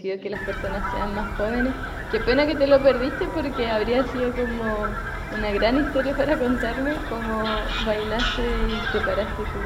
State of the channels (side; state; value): both; identical; correlation 1.00